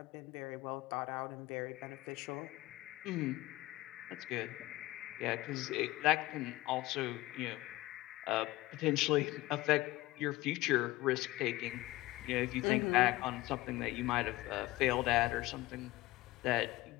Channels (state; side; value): quieter; right; 18.8 dB